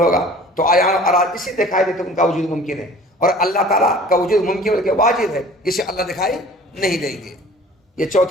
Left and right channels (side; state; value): both; normal; correlation 0.47